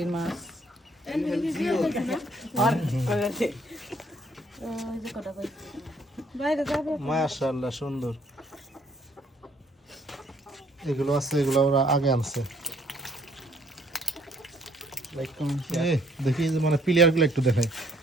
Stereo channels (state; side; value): normal; both; correlation 0.64